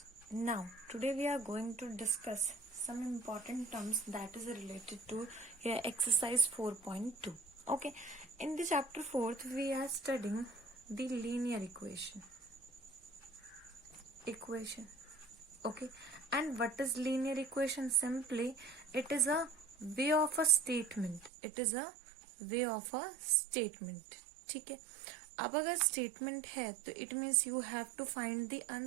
Now today we are going to discuss some important terms that is related to your exercise 4.2. Okay. In the chapter 4th we are studying the linear equation. Okay. And what is linear equation? Simply it is a way of a statement. ठीक है. अब अगर statement है तो it means you have to find the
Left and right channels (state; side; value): drops out; left; at 21.3 s